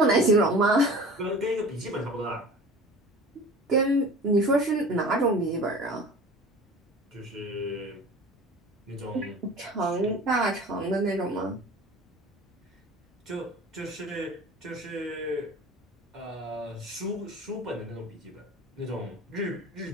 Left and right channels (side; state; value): both; normal; correlation 0.40